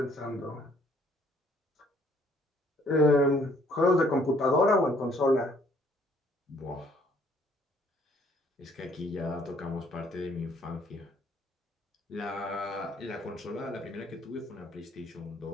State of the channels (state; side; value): normal; both; correlation 0.63